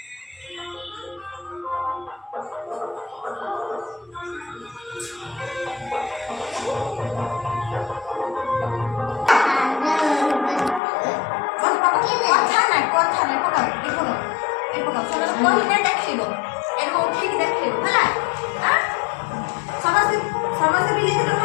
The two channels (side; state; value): right; drops out; at 10.8 s